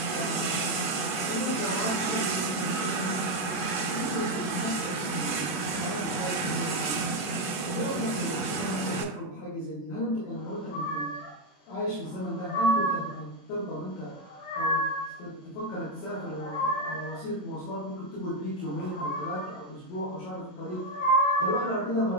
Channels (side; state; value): right; late; 27 ms